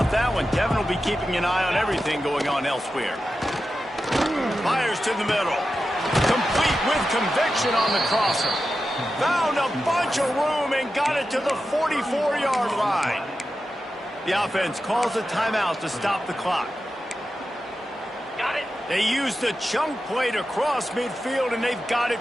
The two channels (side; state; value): both; normal; correlation 0.91